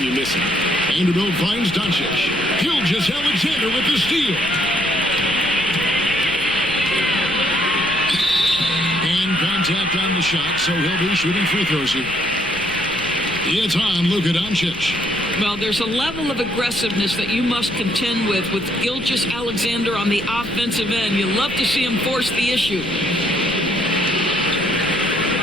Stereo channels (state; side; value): noise; left; rumble, 17 dB below the sound